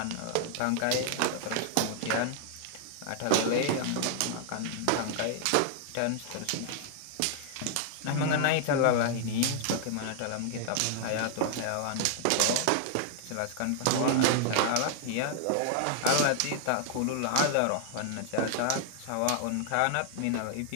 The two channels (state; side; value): different; both; correlation -0.01